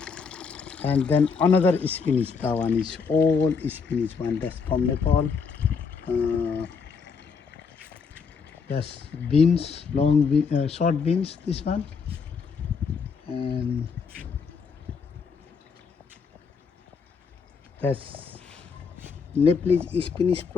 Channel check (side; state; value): right; quieter; 5.5 dB